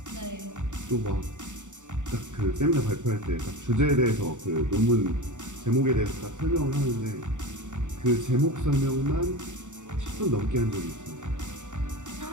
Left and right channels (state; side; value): late; left; 0.85 ms